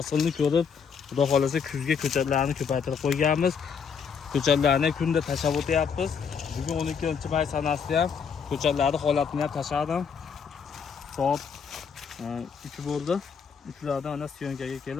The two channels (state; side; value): quieter; right; 6.4 dB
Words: ko'rib, xudo xolasa kuzga ko'chatlarni ko'paytirib qo'yganmiz. Ko'chatlarni kunda tashlab o'tyapmiz. Bugun 12-may sanasida ham ko'chatlarni holatini ham tashladim. Soat 3 bo'ldi. Uchlardan ana syonkaga